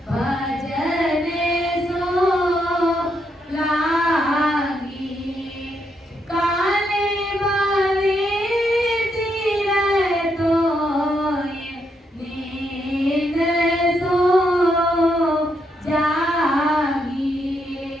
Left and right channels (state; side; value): normal; both; correlation 0.78